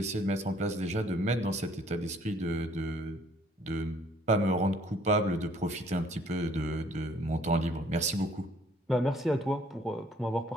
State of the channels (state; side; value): normal; both; correlation 0.61